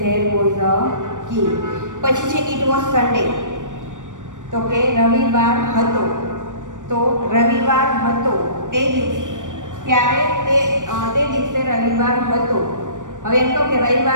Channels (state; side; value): late; left; 0.87 ms